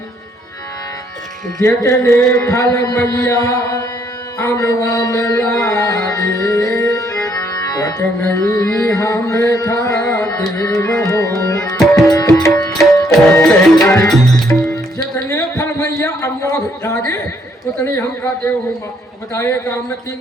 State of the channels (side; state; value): both; normal; correlation 0.70